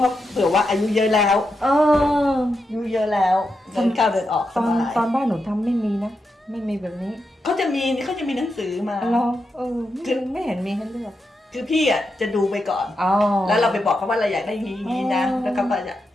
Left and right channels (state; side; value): normal; both; correlation 0.86